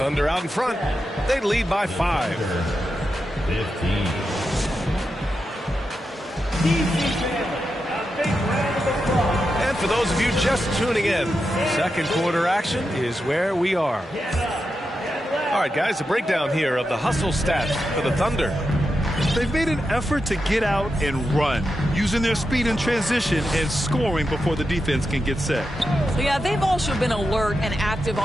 out in front. They lead by 5. 15. And for those of you just tuning in, second quarter action is where we are. All right, guys, a breakdown here of the hustle stats for the Thunder. They've made an effort to get out and run, using their speed in transition and scoring before the defense can get set. Yeah, they've also been alert and active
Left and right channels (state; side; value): normal; both; correlation 0.88